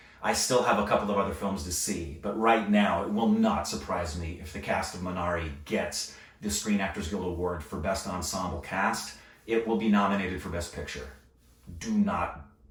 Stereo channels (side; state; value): both; identical; correlation 1.00